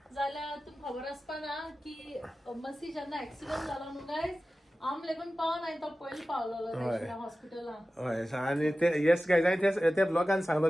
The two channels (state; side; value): normal; both; correlation 0.95